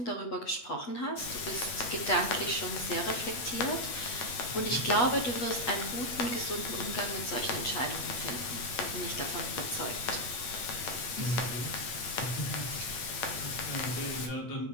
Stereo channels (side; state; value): right; late; 8.2 ms